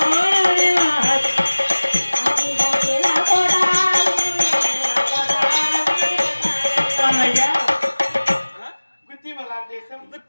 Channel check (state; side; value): inverted; both; correlation -1.00